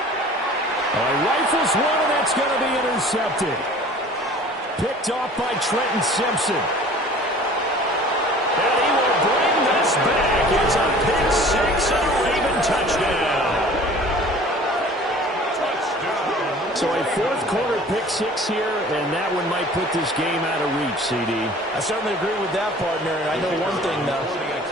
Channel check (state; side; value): normal; both; correlation 0.46